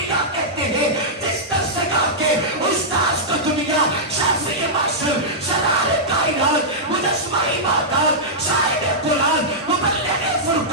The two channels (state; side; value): normal; both; correlation -0.11